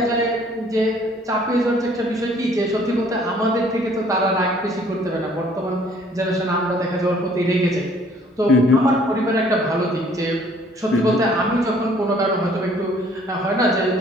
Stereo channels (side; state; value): both; normal; correlation 0.58